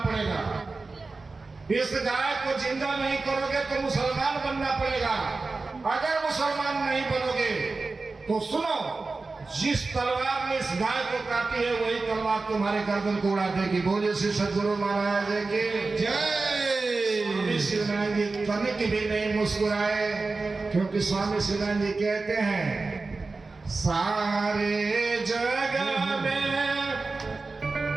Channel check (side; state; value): left; quieter; 3.8 dB